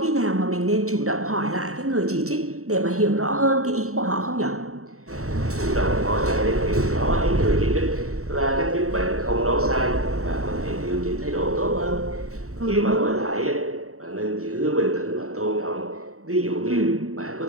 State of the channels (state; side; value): late; left; 0.64 ms